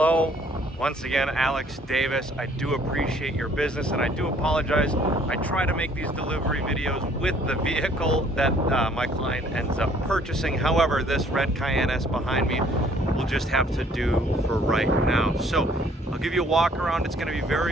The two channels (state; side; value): normal; both; correlation 0.60